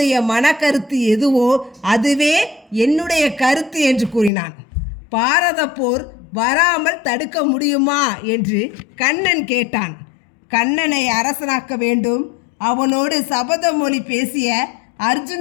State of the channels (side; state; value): right; drops out; at 4.3 s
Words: மனக்கருத்து எதுவோ அதுவே என்னுடைய கருத்து என்று கூறினான். பாரத போர் வராமல் தடுக்க முடியுமா என்று கண்ணன் கேட்டான். கண்ணனை அரசனாக்க வேண்டும், அவனோடு சபதமொழி பேசிய